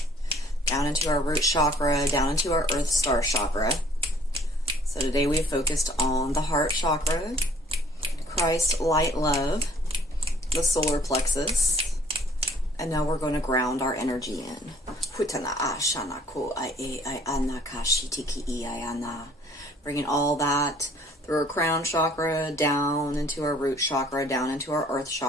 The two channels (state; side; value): normal; both; correlation 0.57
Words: down into our root chakra, down into our earth star chakra. So today we focused on the heart chakra, Christ, light, love, the solar plexus, and now we're going to ground our energy in. Bringing all that through our crown chakra, down into our root chakra, down into our earth